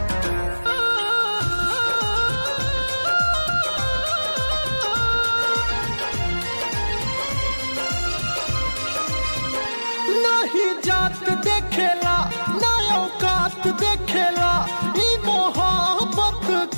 नहीं जात देखेला ना औकात देखेला ई मोहब्बत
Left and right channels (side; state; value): both; inverted; correlation -1.00